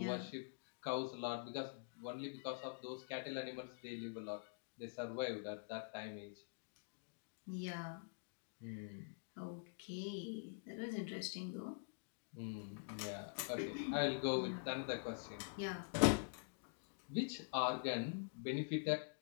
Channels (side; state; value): right; silent; digital silence